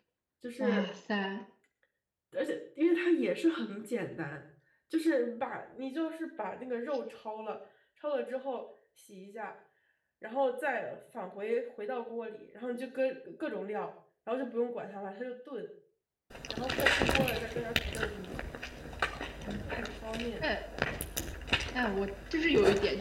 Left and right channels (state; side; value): identical; both; correlation 1.00